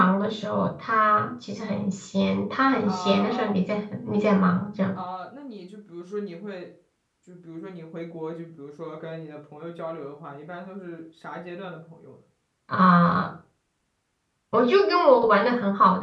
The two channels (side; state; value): both; identical; correlation 1.00